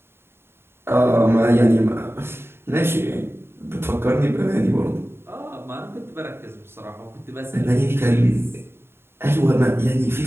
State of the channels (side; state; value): left; late; 0.11 ms